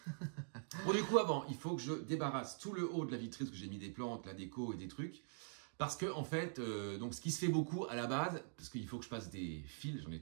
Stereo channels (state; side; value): silent; left; digital silence